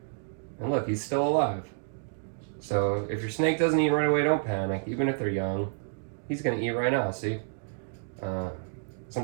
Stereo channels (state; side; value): silent; left; digital silence